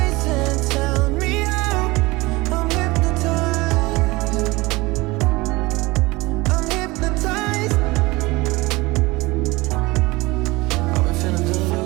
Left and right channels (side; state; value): left; quieter; 22.2 dB